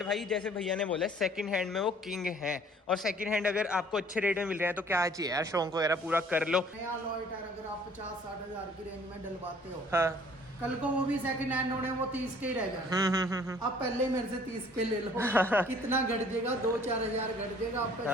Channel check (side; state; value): both; normal; correlation 0.55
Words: भाई जैसे भैया ने बोला सेकंड हैंड में वो किंग है, और सेकंड हैंड अगर आपको अच्छे रेट में मिल रहे हैं तो क्या चाहिए यार, शौक वगैरह पूरा कर लो। नया अलॉय टायर अगर आप 50-60 हजार की रेंज में डलवाते हो, हाँ। कल को वो भी सेकंड हैंड होने, वो 30 के ही रह जाए। आप पहले मेरे से 30 के ले लो। कितना घट जाएगा? 2-4 हजार घट जाएगा, आपका